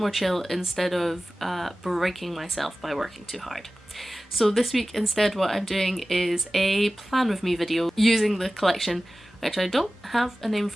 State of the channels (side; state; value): both; normal; correlation 0.97